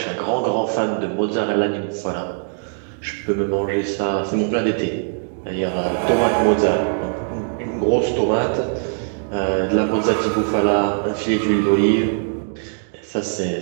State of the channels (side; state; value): left; silent; digital silence